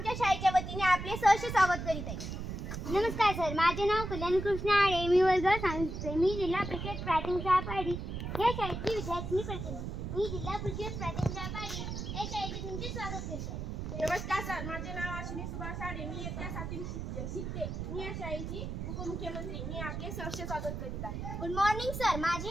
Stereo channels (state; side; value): noise; right; rumble, 5 dB below the sound